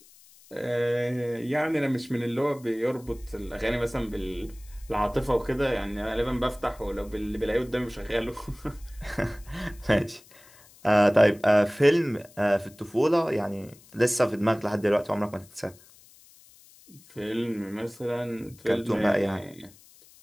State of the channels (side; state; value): left; noise; hiss, 25 dB below the sound